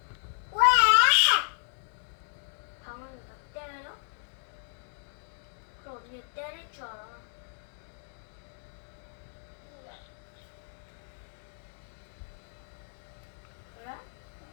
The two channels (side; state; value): right; silent; digital silence